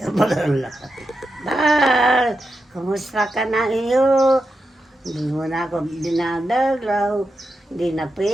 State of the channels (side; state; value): both; normal; correlation 0.88